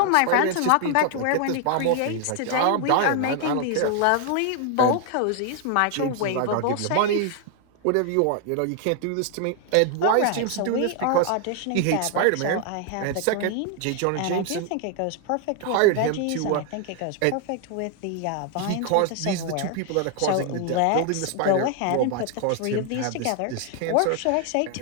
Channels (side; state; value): both; different; correlation 0.00